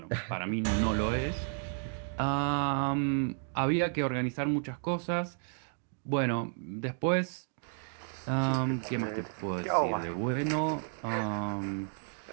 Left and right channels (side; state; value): left; silent; 56 dB below the other